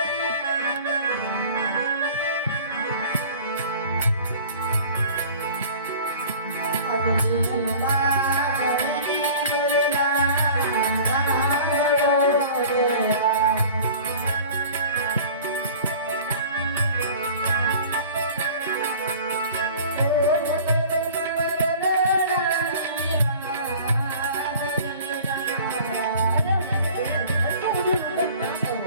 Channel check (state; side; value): inverted; both; correlation -0.44